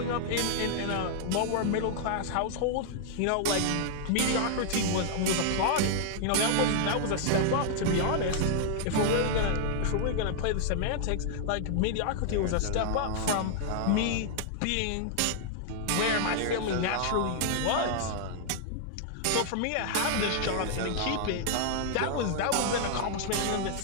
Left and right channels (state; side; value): different; both; correlation -0.01